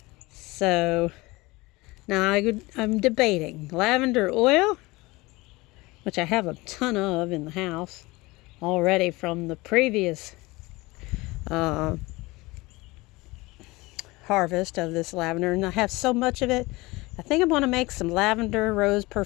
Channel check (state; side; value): quieter; right; 22.2 dB